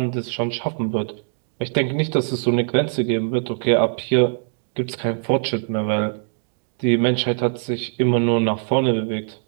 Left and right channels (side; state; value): left; silent; digital silence